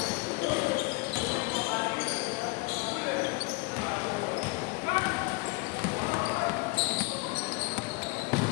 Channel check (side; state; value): right; quieter; 26.2 dB